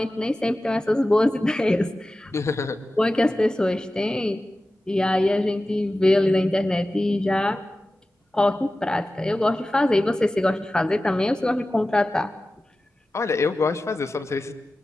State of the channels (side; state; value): both; normal; correlation 0.95